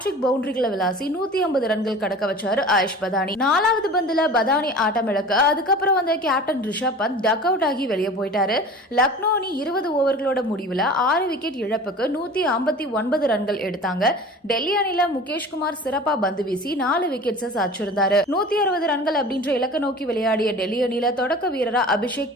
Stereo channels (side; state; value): both; normal; correlation 0.39